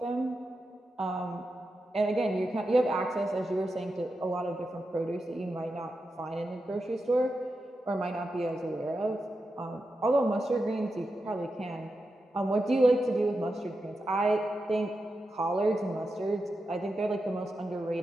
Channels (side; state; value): both; normal; correlation 0.89